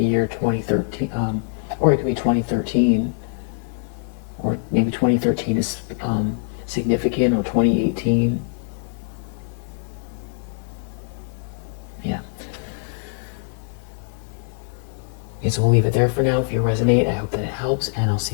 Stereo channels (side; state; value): right; silent; digital silence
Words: year 2013, or it could be 2013, or maybe 2013 is significant, or 2018. Yeah. Okay, so we'll leave it there for now. If you resonate, I hope that it helps, and I'll